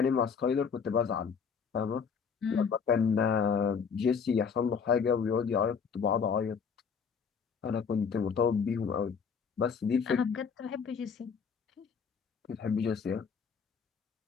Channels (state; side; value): quieter; right; 6.2 dB